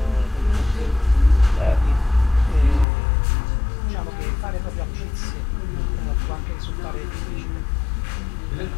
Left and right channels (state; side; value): drops out; right; at 2.9 s